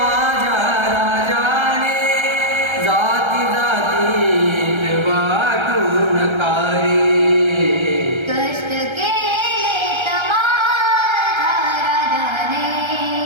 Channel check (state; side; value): late; left; 1.3 ms